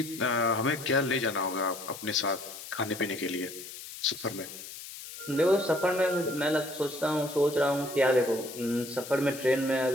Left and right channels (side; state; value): left; noise; hiss, 12 dB below the sound